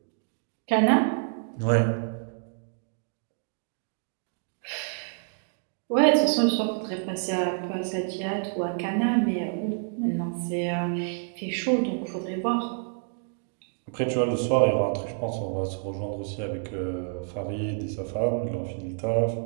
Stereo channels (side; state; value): left; silent; 59 dB below the other